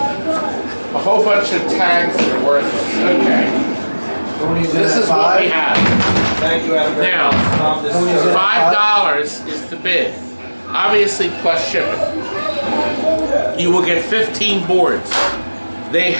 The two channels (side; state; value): both; inverted; correlation -1.00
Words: A whole bunch of tags that are worthless. Okay. This is what we have. Thank you, Adam. Now, This is $5 is the bid. Obviously plus shipping. You will get 15 boards. They